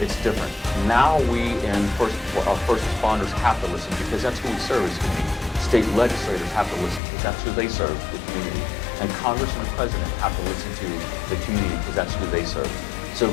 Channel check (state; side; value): drops out; right; at 7.0 s